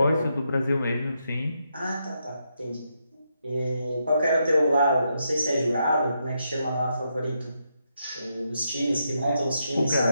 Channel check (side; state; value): both; inverted; correlation -0.81